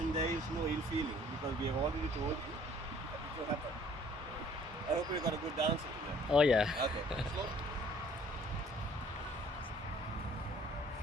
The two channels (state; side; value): normal; both; correlation 0.56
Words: there is no ill feeling because we have already told you that it will happen. I hope you got a good answer to that. Oh yeah. Okay.